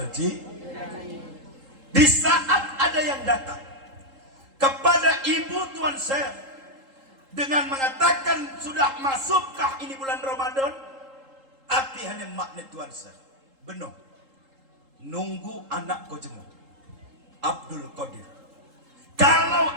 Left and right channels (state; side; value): late; left; 3.8 ms